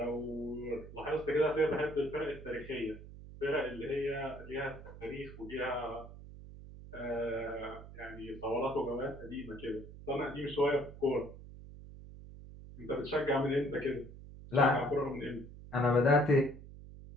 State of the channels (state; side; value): noise; right; hum, 15 dB below the sound